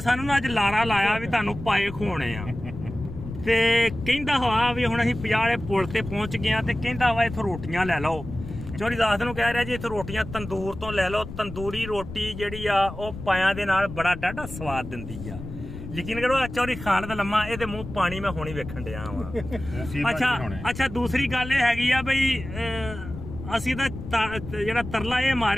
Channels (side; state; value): left; noise; rumble, 11 dB below the sound